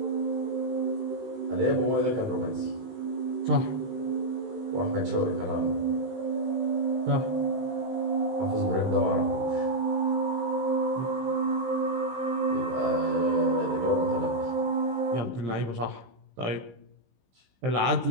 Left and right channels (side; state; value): left; late; 16 ms